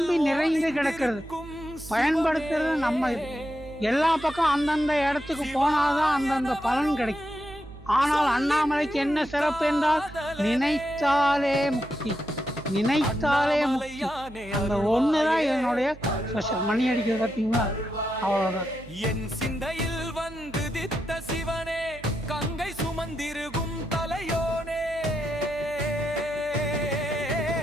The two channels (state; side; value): noise; right; hum, 18 dB below the sound